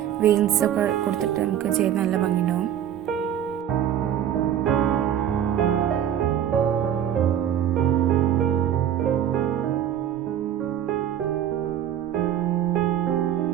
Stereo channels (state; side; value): quieter; left; 10.2 dB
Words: വെയിൻസൊക്കെ കൊടുത്തിട്ട് നമുക്ക് ചെയ്ത് നല്ല ഭംഗിയുണ്ടാവും.